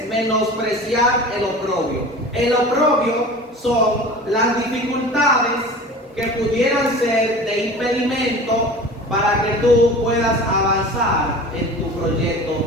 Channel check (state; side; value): normal; both; correlation 0.37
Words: menospreciar el oprobio? El oprobio son las dificultades que pudieran ser de impedimento para que tú puedas avanzar en tu